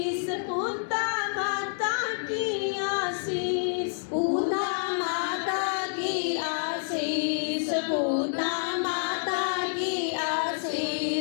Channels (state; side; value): silent; right; 59 dB below the other